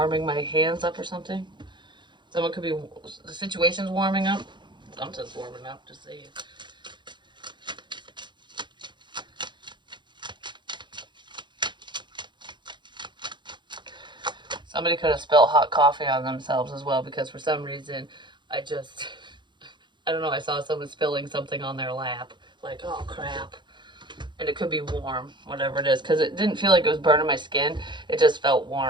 my hands up or something. Someone could be, the situation's warming up. Something's warming up, just saying. Somebody could have spilled hot coffee on themselves as well, because for some reason, I don't know, I saw someone spilling something on their lap. Like, oh crap. And it could be warm, whatever it is, because it didn't feel like it was burning my skin. It just felt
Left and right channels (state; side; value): late; left; 0.22 ms